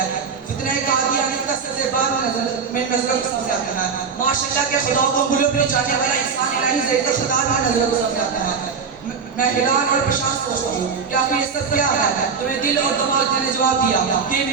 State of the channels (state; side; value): quieter; left; 5.8 dB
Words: فتنہ قادیانیت کا سزیباب میں نظر سامنے آتا ہے, ماشاءاللہ کے خدا کو گلوں پہ جانے والا انسان الہی زید خدا میں نظر سامنے آتا ہے. میں حیران اور پریشان سوچتا ہوں کہ آخر یہ سب کیا ہے؟ تمہیں دل اور دماغ نے جواب دیا کہ یہ